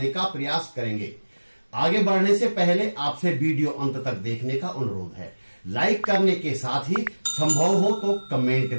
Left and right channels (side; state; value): both; inverted; correlation -1.00